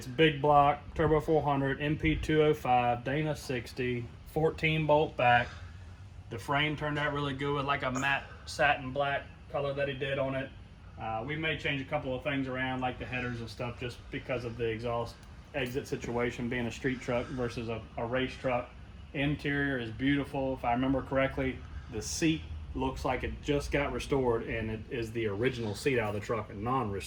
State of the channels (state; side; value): identical; both; correlation 1.00